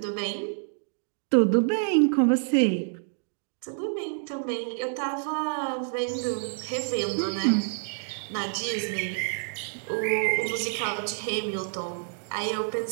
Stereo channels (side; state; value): left; silent; digital silence